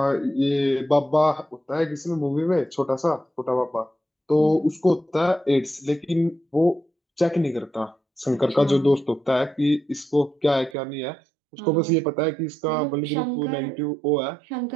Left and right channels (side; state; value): left; drops out; at 10.8 s